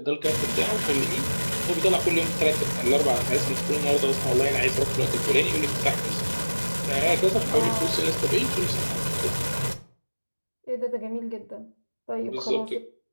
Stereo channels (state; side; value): inverted; both; correlation -1.00